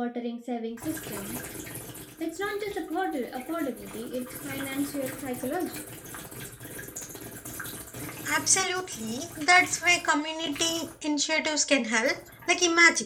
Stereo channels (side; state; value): both; identical; correlation 1.00